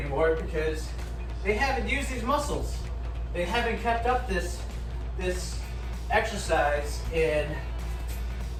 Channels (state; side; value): identical; both; correlation 1.00